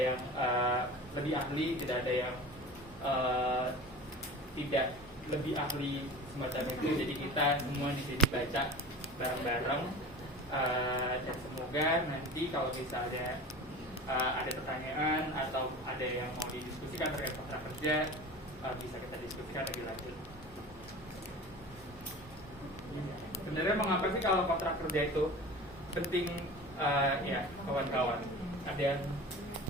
lebih ahli, tidak ada yang tidak lebih ahli semacam itu. Jadi kita semua di sini baca bareng-bareng, dan semoga nanti kalau misalnya ada pertanyaan atau ada yang mau didiskusikan terkait kontrak kerja, bisa kita diskusikan lebih lanjut. Sebenarnya mengapa sih kalau kontrak kerja itu penting, ya kawan-kawan? Ada yang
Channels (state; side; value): normal; both; correlation 0.35